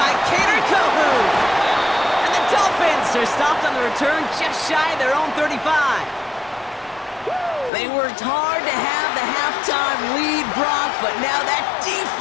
Cater Kohou. And the Dolphins are stopped on the return just shy of their own 35. They worked hard to have the halftime lead, Brock, but now that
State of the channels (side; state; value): right; drops out; at 7.7 s